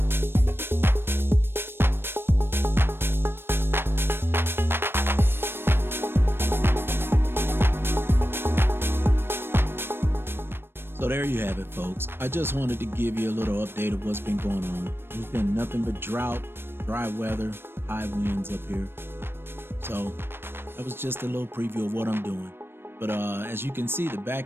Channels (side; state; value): left; late; 0.11 ms